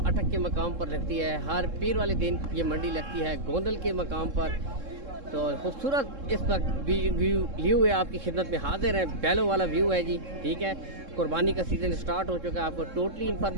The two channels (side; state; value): left; late; 3.7 ms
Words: अटक के मकाम पर लगती है। हर पीर वाले दिन ये मंडी लगती है गोंदल के मकाम पर। तो खूबसूरत इस वक्त व्यू लिए हुए आपकी खिदमत में हाजिर है। बैलों वाला व्यू है जी, ठीक है। कुर्बानी का सीज़न स्टार्ट हो चुका है। आपको टोटली